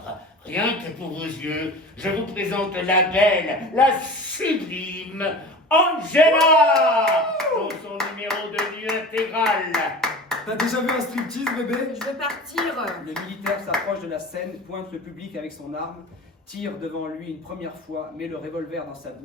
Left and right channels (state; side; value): normal; both; correlation 0.36